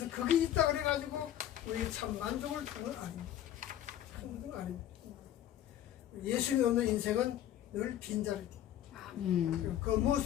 그게 있다 그래가지고 우리 참 만족을 하는 건 아닙니다. 하는 건 아닙니다. 예수님이 없는 인생은 늘 빈자리입니다. 그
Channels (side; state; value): right; quieter; 11.7 dB